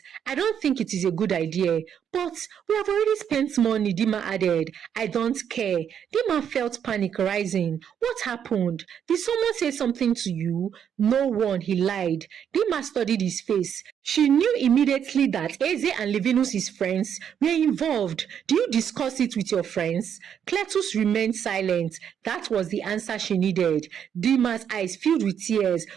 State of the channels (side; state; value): left; quieter; 8.5 dB